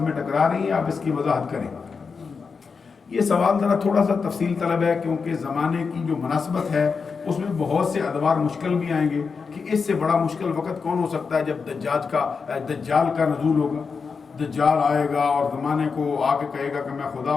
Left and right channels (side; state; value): right; quieter; 5.2 dB